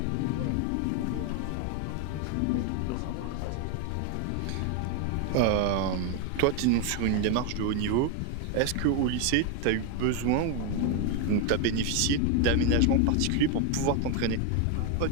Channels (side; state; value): both; different; correlation 0.01